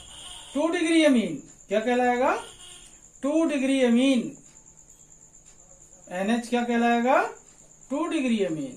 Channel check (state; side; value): identical; both; correlation 1.00